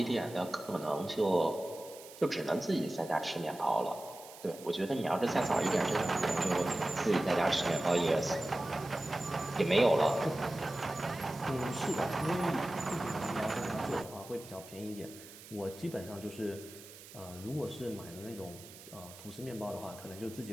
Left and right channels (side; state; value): right; noise; hiss, 17 dB below the sound